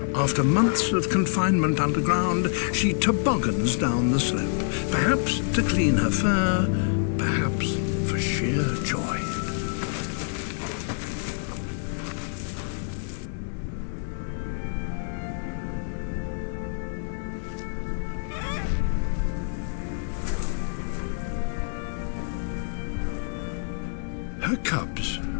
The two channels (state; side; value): silent; right; digital silence